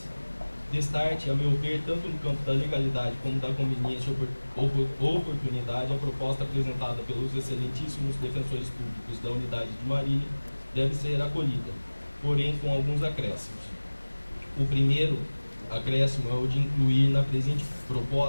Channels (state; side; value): inverted; both; correlation -1.00